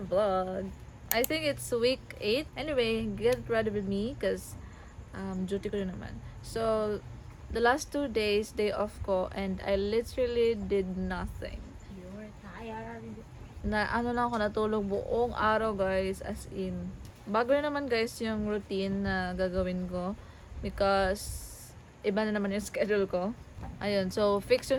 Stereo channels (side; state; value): both; identical; correlation 1.00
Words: I think it's week 8. Anyway, get ready with me because duty ko rin naman. So, the last 2 days, day off ko, and I literally did nothing. You're tired. Ano lang ako natulog buong araw guys, as in. Bago na naman guys yung routine na gagawin ko because iba na naman yung schedule ko. Ayun, so fix